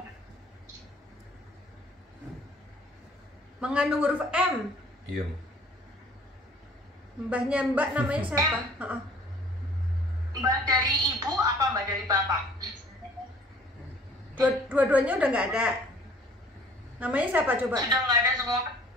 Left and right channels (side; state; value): both; normal; correlation 0.53